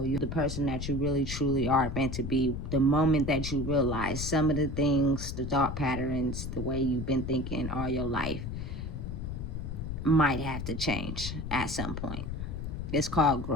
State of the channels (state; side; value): noise; left; rumble, 5 dB below the sound